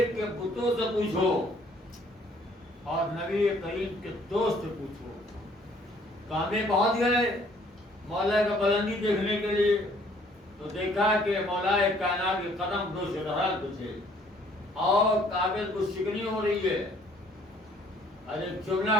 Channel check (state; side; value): normal; both; correlation 0.61